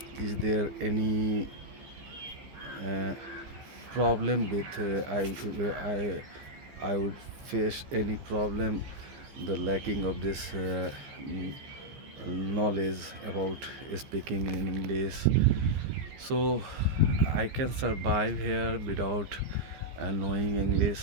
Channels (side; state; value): left; late; 15 ms